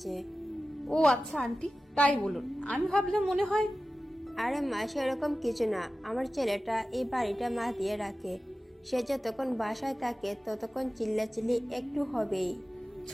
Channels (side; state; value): both; normal; correlation 0.95